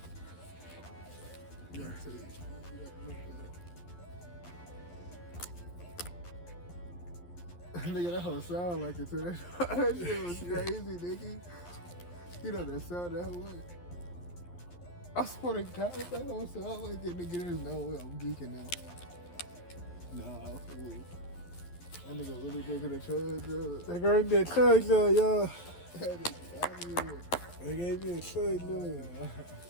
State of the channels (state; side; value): late; right; 11 ms